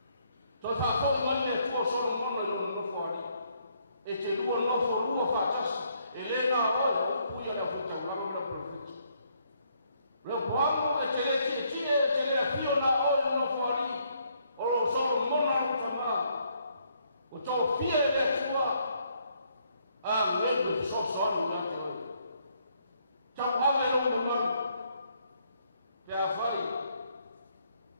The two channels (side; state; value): both; inverted; correlation -0.71